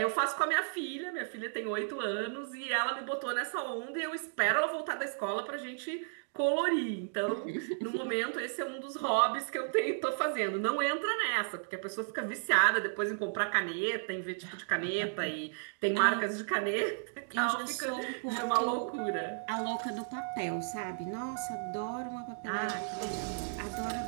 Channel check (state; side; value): silent; left; digital silence